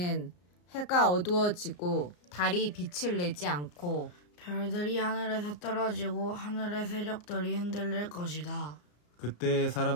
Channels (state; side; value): late; right; 34 ms